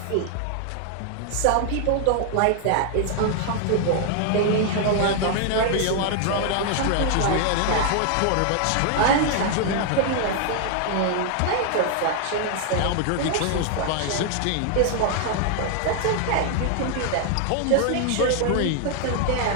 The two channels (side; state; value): both; different; correlation 0.00